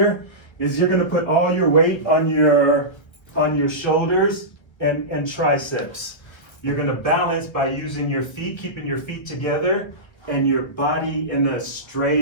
is you're going to put all your weight on your shoulders and triceps. You're going to balance by using your feet, keeping your feet together, and your body in a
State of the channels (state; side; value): late; right; 1.3 ms